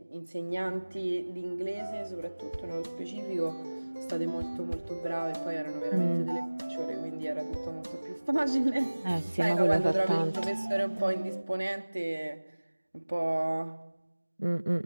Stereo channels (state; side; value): inverted; both; correlation -1.00